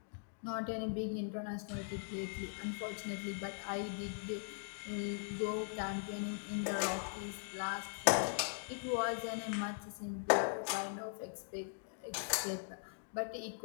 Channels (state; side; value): silent; right; digital silence